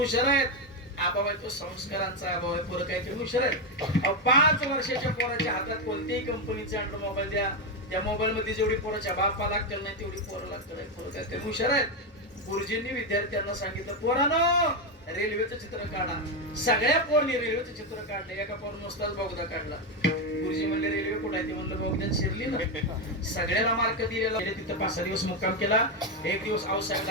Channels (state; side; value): normal; both; correlation 0.08